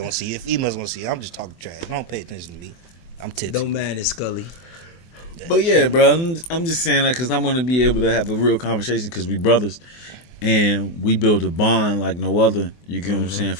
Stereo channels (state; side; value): late; right; 24 ms